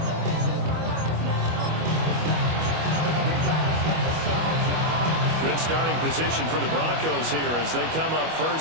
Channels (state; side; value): late; left; 25 ms